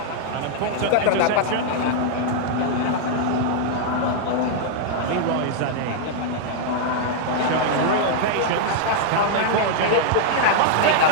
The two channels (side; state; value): both; different; correlation -0.01